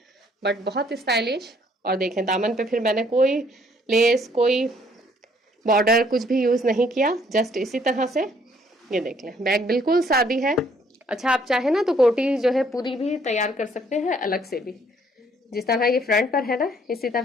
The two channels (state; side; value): normal; both; correlation 0.64